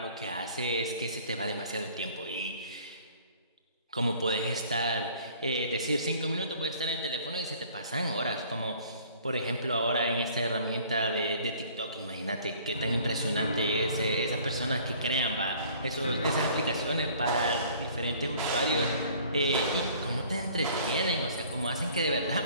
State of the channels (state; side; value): inverted; both; correlation -0.53